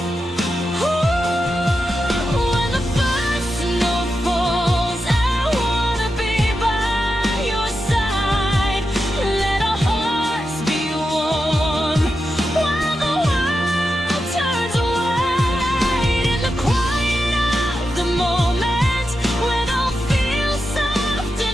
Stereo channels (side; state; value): both; normal; correlation 0.89